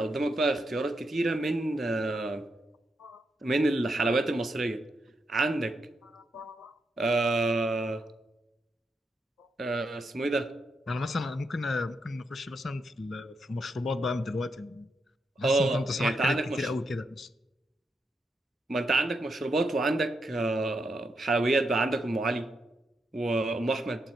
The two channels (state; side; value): normal; both; correlation 0.82